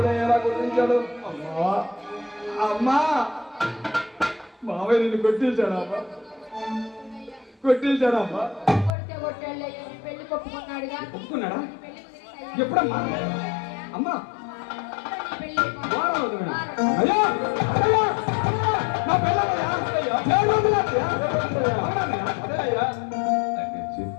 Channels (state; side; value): drops out; right; at 8.9 s